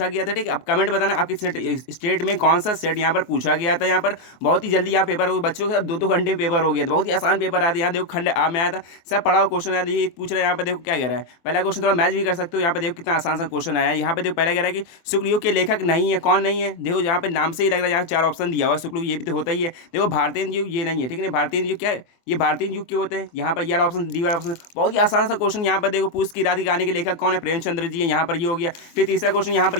गया था। ठीक है, अब कमेंट बताना आपकी स्टेट में कौन सा सेट यहाँ पर पूछा गया था। यहाँ पर बहुत ही जल्दी यहाँ पेपर हो बच्चों के 2-2 घंटे में पेपर हो गया था। बहुत ही आसान पेपर आया था। यहाँ देखो खंड आ में आया था, सब पढ़ा हुआ क्वेश्चन आया था। ये पूछ रहा है यहाँ पे देखो क्या कह रहा है। पहला क्वेश्चन थोड़ा मैच भी कर सकते हो। यहाँ पे देखो कितना आसान सा क्वेश्चन आया है। यहाँ पे देखो पहला कह रहा है कि शुक्लयुग के लेखक नहीं है। कौन नहीं है? देखो यहाँ पे नाम से ही लग रहा है। यहाँ 4 ऑप्शन दिया हुआ है। शुक्लयुग ये भी तो होता ही है। देखो भारतीय युग ये नहीं है। ठीक है, भारतीय युग क्या है? ये भारतीय युग के होते हैं। यहाँ पर ये ऑप्शन डी वाला ऑप्शन बहुत ही आसान सा क्वेश्चन। यहाँ पर देखो पूछ की रात की कहानी के लेखक कौन है? प्रेमचंद्र जी है। यहाँ पर ये हो गया। फिर तीसरा क्वेश्चन यहाँ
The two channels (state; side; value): late; right; 23 ms